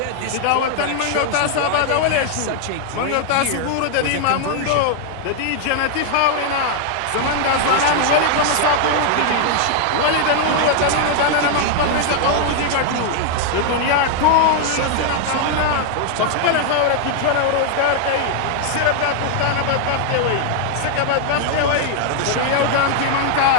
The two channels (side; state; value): both; different; correlation 0.00